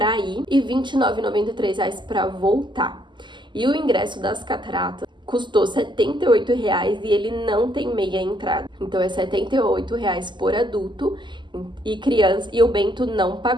ir e R$ 29,93 para voltar. E o ingresso das cataratas custou R$ 78,00 e ele não tem meia entrada. Então é R$ 78,00 por adulto e criança, e o Bento não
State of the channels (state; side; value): late; left; 0.22 ms